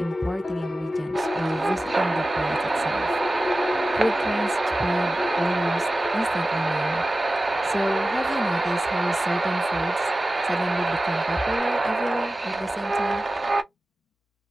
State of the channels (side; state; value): both; normal; correlation 0.95